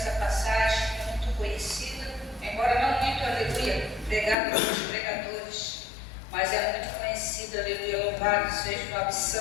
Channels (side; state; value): right; drops out; at 4.4 s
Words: passagem é muito conhecida, embora não muito, aleluia, pregada pelos pregadores, mas é muito conhecida, aleluia, louvado seja o nome